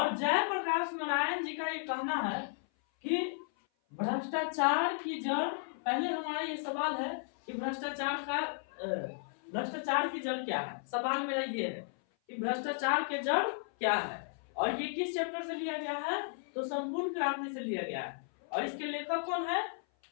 जयप्रकाश नारायण जी का ये कहना है कि भ्रष्टाचार की जड़, पहले हमारा ये सवाल है कि भ्रष्टाचार की जड़ क्या है। सवाल मेरा ये है कि भ्रष्टाचार की जड़ क्या है, और ये किस चैप्टर से लिया गया है? तो संपूर्ण क्रांति से लिया गया है। और इसके लेखक कौन है?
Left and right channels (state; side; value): silent; right; 55 dB below the other